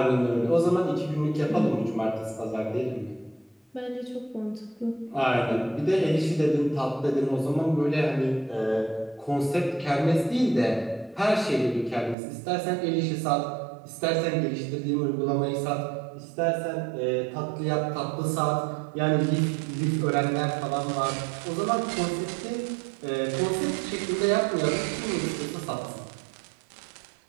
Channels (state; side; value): drops out; left; at 12.2 s